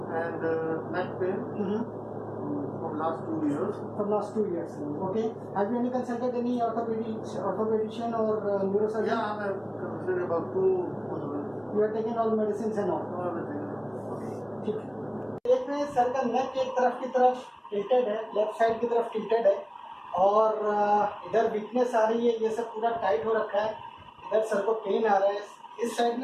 and neck pain from last 2 years। For last 2 years. Okay. Have you any consulted any orthopedician or neurosurgeon? Yeah, I'm considered about 2 You are taking all medicines and all. everything। ठीक है। देख रहे हैं सर का नेक एक तरफ की तरफ टिल्टेड है, लेफ्ट साइड की तरफ टिल्टेड है और इधर वीकनेस आ रही है, ये सब पूरा टाइट हो रखा है। इधर सर को पेन आ रहा है, इस साइड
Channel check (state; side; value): identical; both; correlation 1.00